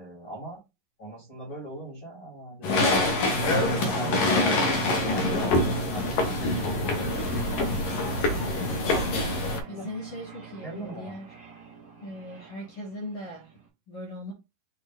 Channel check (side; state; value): right; late; 11 ms